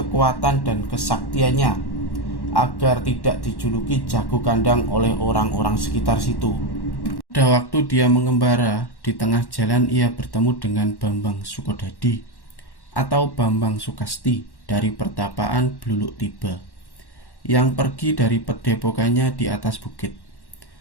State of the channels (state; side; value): late; right; 1.1 ms